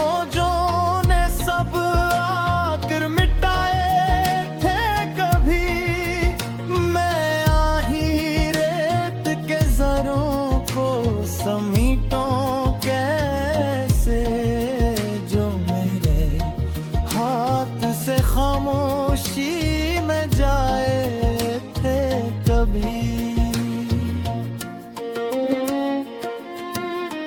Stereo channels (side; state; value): both; identical; correlation 1.00